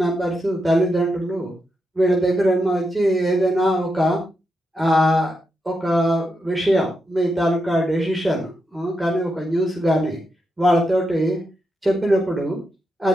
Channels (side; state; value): both; normal; correlation 0.85